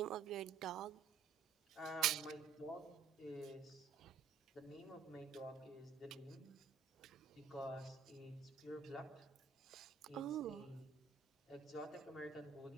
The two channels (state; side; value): quieter; left; 6.1 dB